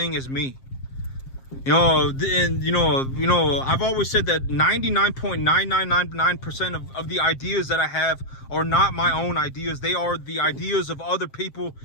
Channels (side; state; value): right; late; 7.5 ms